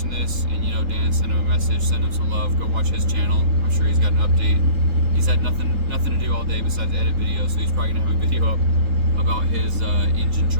this and you know Dan, send him a message, send him some love. Go watch his channel. I'm sure he's got an update. He's had nothing to do all day besides edit videos, so he's probably gonna have a video up about his engine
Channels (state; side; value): late; left; 3.8 ms